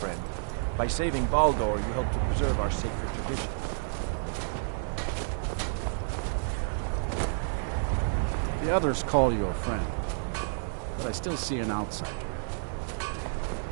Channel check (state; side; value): silent; left; digital silence